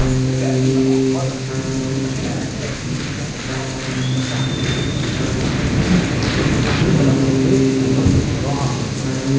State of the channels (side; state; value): both; identical; correlation 1.00